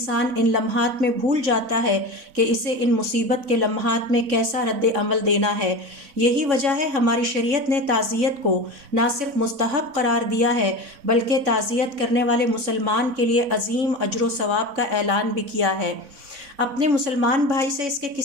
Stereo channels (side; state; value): left; late; 4.0 ms